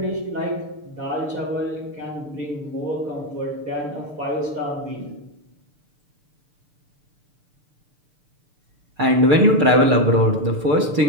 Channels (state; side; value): late; left; 6.8 ms